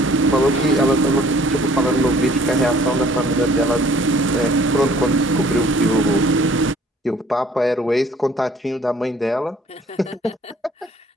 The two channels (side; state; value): both; normal; correlation 0.56